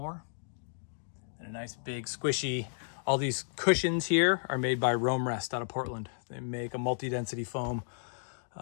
And a nice big squishy, all these cushions here are made by Rome Rest out of Portland. They make a multi-density foam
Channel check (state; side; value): silent; right; digital silence